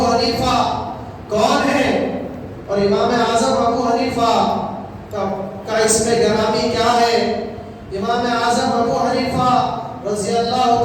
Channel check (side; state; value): both; identical; correlation 1.00